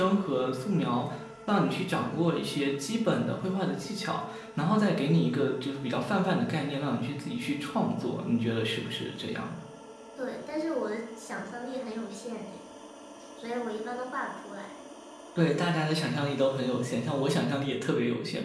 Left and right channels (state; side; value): identical; both; correlation 1.00